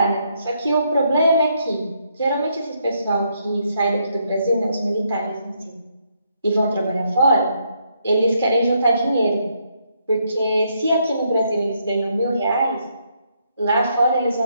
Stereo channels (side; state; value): both; inverted; correlation -0.75